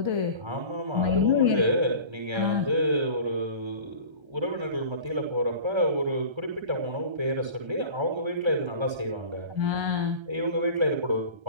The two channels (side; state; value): left; late; 1.3 ms